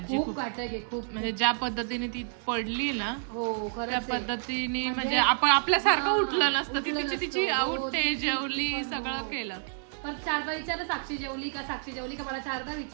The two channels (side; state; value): left; silent; digital silence